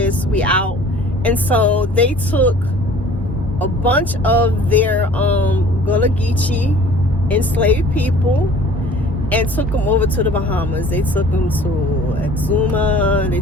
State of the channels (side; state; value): both; normal; correlation 0.49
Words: we out. And so they took a bunch of their Gullah Geechee enslaved people and took them over to the Bahamas. They took them to Exuma, they